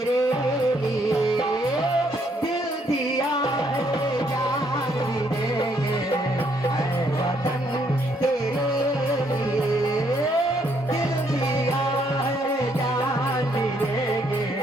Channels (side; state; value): both; normal; correlation 0.70